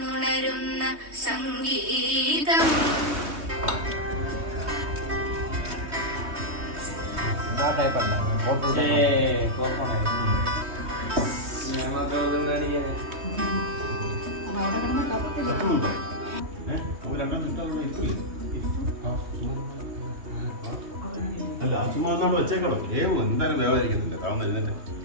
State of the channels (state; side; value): late; left; 3.2 ms